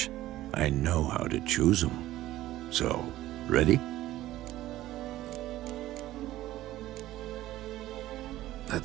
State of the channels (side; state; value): left; quieter; 15.1 dB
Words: I know how to choose them. So, ready?